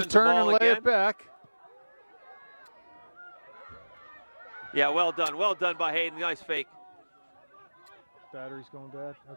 turn and lay it back. Yeah, well done by Hayden. Nice fake. Battery's going bad.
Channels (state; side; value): inverted; both; correlation -1.00